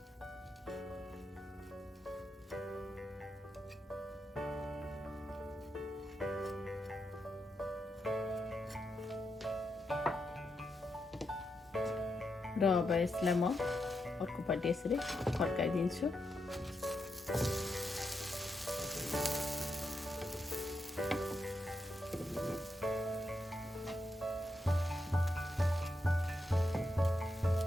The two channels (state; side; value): normal; both; correlation 0.84